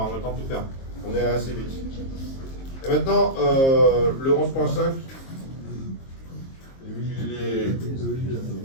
a le temps de tout faire. On est assez vite. Et maintenant, le 11.5, il est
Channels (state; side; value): late; right; 22 ms